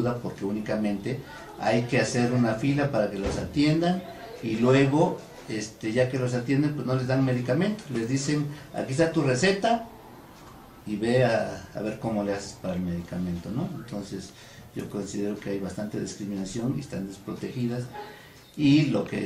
porque únicamente hay que hacer una fila para que los atiendan, y luego ya que los atienden pues no les dan medicamentos, les dicen aquí está tu receta y ve a ver cómo le haces para el medicamento, ¿no? Entonces yo considero que hay bastante discriminación y están desprotegidas, y lo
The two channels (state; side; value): identical; both; correlation 1.00